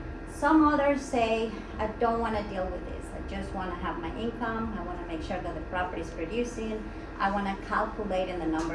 Some others say I don't want to deal with this. I just want to have my income. I want to make sure that the property is producing. I want to calculate in the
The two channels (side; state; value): both; identical; correlation 1.00